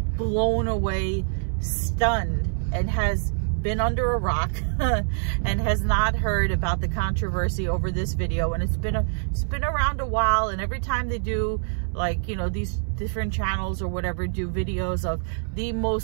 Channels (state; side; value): silent; left; 62 dB below the other